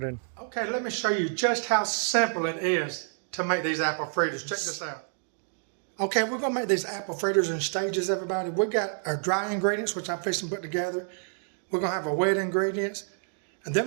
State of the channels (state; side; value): silent; left; 59 dB below the other